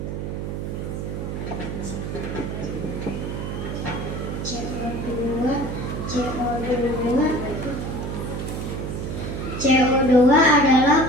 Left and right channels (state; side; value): noise; right; hum, 4 dB below the sound